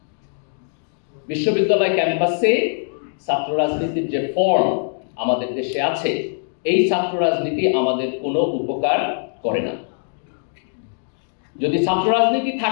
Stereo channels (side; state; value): right; silent; digital silence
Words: বিশ্ববিদ্যালয় ক্যাম্পাসে ছাত্র রাজনীতির যে ফর্ম আমাদের দেশে আছে, এই ছাত্র রাজনীতি আমাদের কোনো উপকার করে না। যদি ছাত্র রাজনীতি